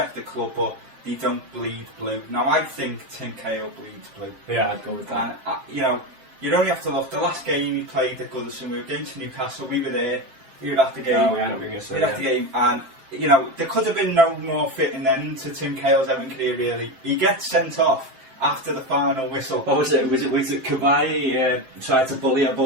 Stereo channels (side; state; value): left; late; 7.6 ms